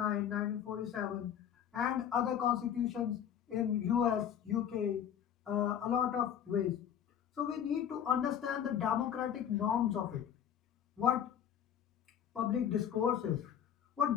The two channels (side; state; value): right; quieter; 9.2 dB